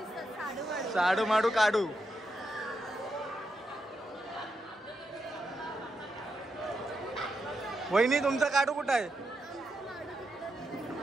साडू माडू काढू. वहिनी तुमचा काढू कुठं आहे?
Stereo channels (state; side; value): normal; both; correlation 0.84